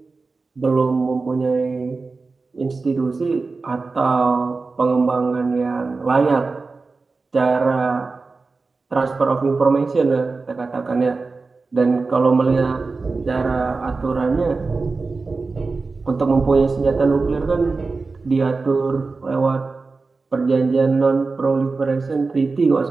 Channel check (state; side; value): quieter; left; 4.0 dB